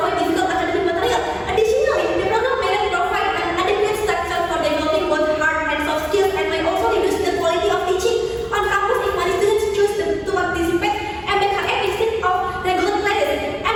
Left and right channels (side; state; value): both; identical; correlation 1.00